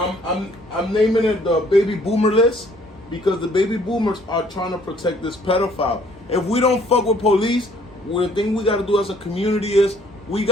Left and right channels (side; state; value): both; normal; correlation 0.61